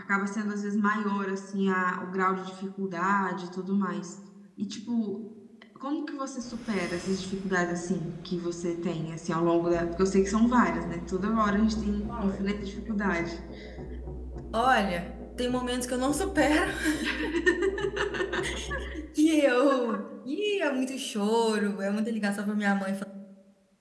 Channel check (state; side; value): identical; both; correlation 1.00